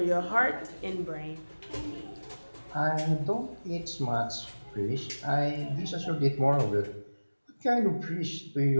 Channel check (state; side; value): inverted; both; correlation -1.00